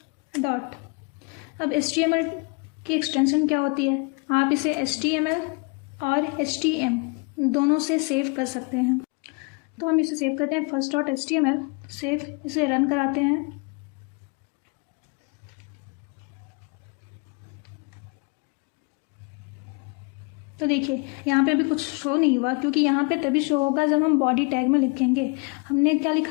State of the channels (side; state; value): right; quieter; 32.4 dB